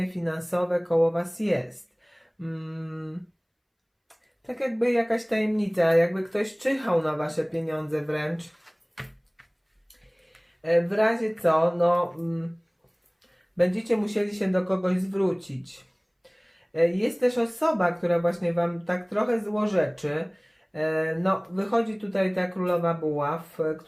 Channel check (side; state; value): both; identical; correlation 1.00